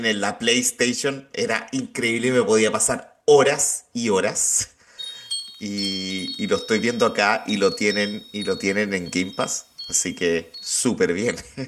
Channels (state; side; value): identical; both; correlation 1.00